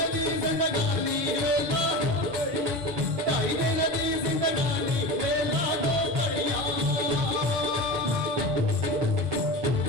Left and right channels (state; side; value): late; left; 9.0 ms